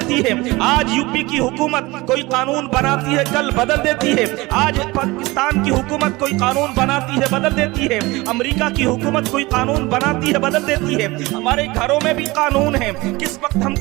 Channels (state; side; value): quieter; left; 21.8 dB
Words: ہے. آج یو پی کی حکومت کوئی قانون بناتی ہے، کل بدل دیتی ہے. آج پاکستان کی حکومت کوئی قانون بناتی ہے، بدل دیتی ہے. امریکہ کی حکومت کوئی قانون بناتی ہے، بدل دیتی ہے. ہمارے گھروں میں بھی قانون ہے، کس وقت ہم